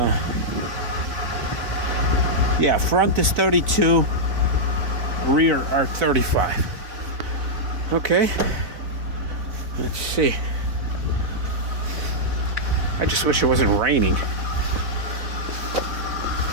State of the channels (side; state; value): left; late; 4.1 ms